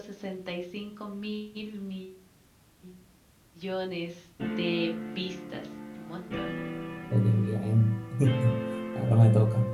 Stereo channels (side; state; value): both; identical; correlation 1.00